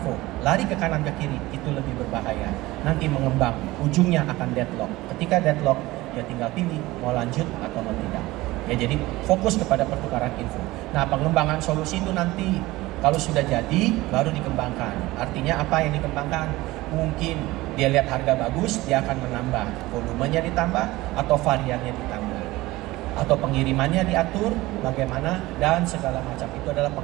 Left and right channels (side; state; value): left; quieter; 19.0 dB